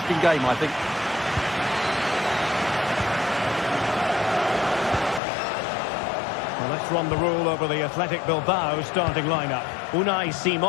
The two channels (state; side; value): drops out; right; at 5.2 s